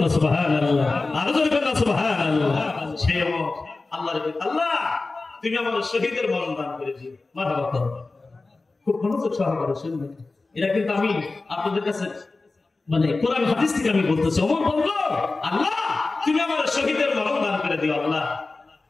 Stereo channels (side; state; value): right; quieter; 3.5 dB